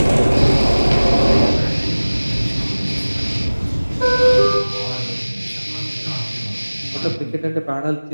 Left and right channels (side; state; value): both; inverted; correlation -1.00